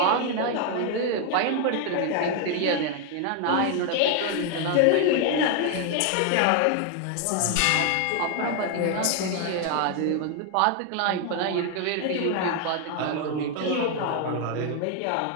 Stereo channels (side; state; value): both; different; correlation 0.00